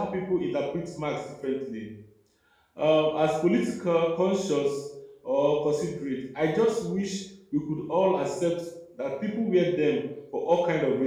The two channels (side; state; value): both; identical; correlation 1.00